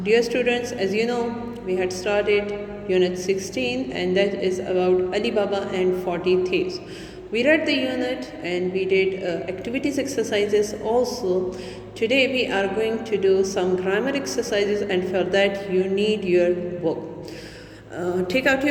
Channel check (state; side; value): identical; both; correlation 1.00